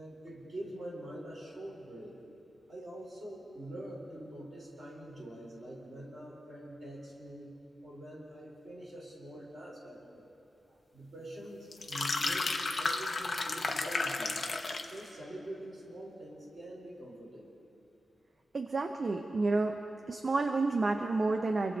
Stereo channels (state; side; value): normal; both; correlation 0.91